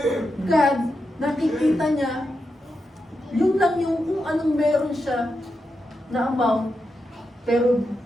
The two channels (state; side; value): normal; both; correlation 0.87